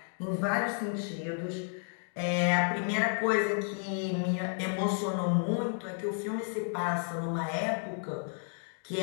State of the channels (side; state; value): right; silent; 56 dB below the other